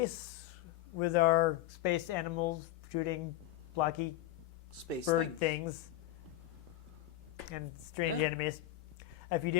with our space animals shooting blocky Space bird things. things and strange enemies. If you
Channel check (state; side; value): quieter; right; 14.2 dB